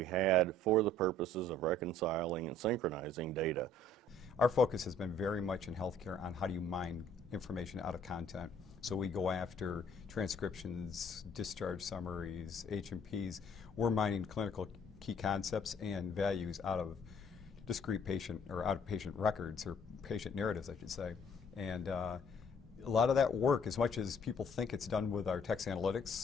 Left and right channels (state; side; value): normal; both; correlation 0.59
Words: had for the purposes of reconciling and synchronizing data. Our focus has been very much in healthcare on how do you mine information out of content. So we go after transcriptions, discharge summaries, H&Ps. We're mining clinical key concepts and values out of discrete patient or out of patient records or patient narratives, I should say. And a lot of that work, as much as people think it's done with our text analytics